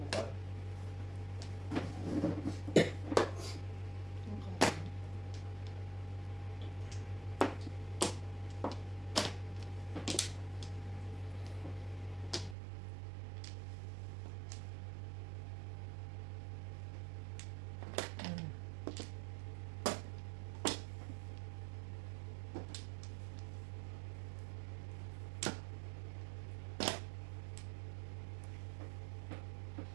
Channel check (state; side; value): drops out; left; at 12.6 s